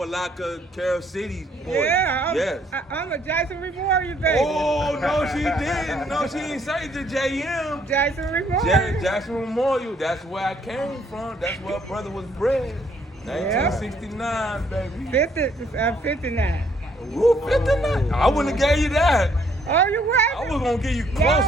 Carroll City boy. Yeah, yes. I'm a Jason Memorial baby. Oh, no, she didn't. No, she didn't say the JM. Jason Memorial. Jackson Memorial. That's where I came from. That's where brother was bred. 1969, baby. 59. Woo, 59. I wouldn't have gave you that. Oh, you what? I was gonna give you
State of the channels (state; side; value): normal; both; correlation 0.66